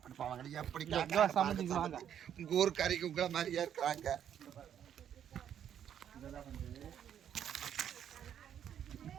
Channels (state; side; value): quieter; left; 9.4 dB